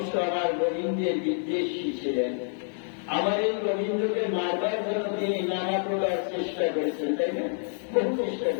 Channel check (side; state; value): right; silent; 60 dB below the other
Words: আমার গোবিন্দের বিদ্বেষী ছিলেন। আমার এই গোবিন্দকে মারবার জন্য তিনি নানা প্রকার চেষ্টা করেছেন, তাই না? বহু চেষ্টা